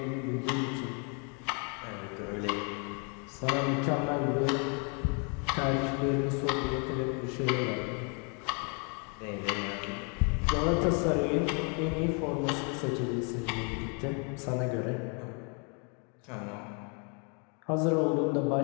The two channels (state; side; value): quieter; right; 37.0 dB